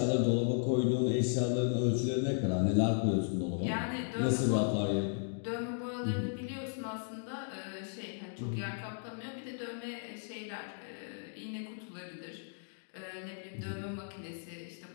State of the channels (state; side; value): silent; right; digital silence